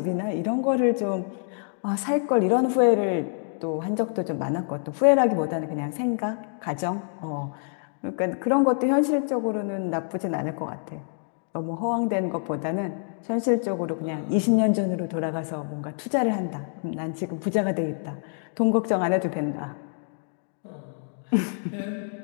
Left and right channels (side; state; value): right; silent; digital silence